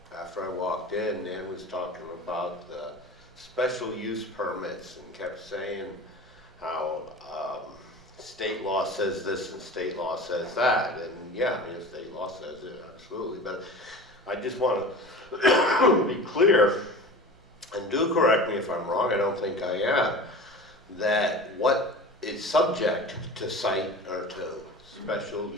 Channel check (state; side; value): normal; both; correlation 0.36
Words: after I walked in, Nan was talking about the special use permits and kept saying how state law says this and state law says that. And yeah, I mean, state law says it, absolutely. But I just want to be clear, and do correct me if I'm wrong, I don't think I am, that what is subject to site or to special